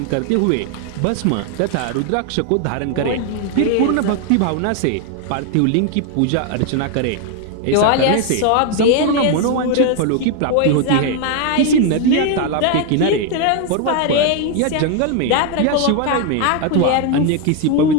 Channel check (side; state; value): both; different; correlation 0.01